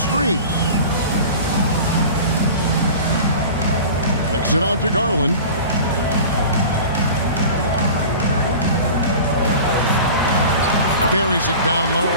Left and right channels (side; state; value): both; inverted; correlation -0.37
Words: Kicks it out to Garland. Buries it down low.